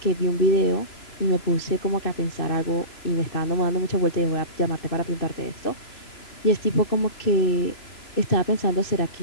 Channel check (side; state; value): right; late; 3.0 ms